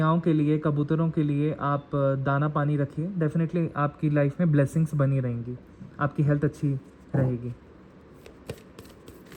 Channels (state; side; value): identical; both; correlation 1.00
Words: के लिए, कबूतरों के लिए आप दाना पानी रखिए। डेफिनेटली आपकी लाइफ में ब्लेसिंग्स बनी रहेंगी, आपकी हेल्थ अच्छी रहेगी।